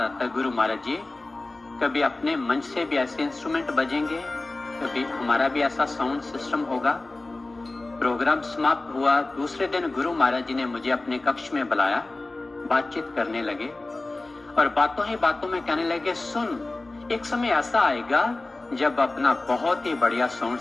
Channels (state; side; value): quieter; right; 3.1 dB